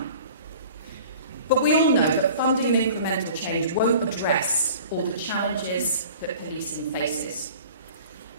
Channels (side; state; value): both; inverted; correlation -0.45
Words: But we all know that funding and incremental change won't address all the challenges that policing faces.